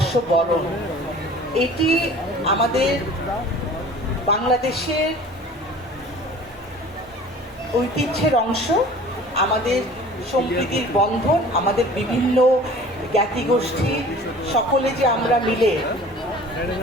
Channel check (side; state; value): both; normal; correlation 0.45